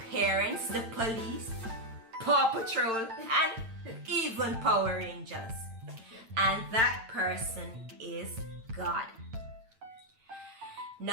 parents, the police, Paw Patrol, and even Power Rangers. And that person is God.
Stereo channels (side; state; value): left; late; 8.9 ms